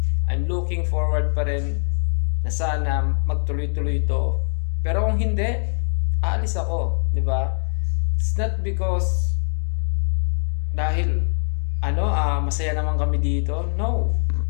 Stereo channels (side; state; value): right; silent; digital silence